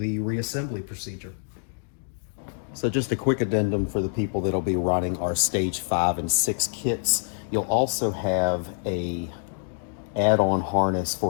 reassembly procedure. So just a quick addendum for the people that'll be running our stage 5 and 6 kits. You'll also have a add-on harness for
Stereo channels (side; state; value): right; silent; digital silence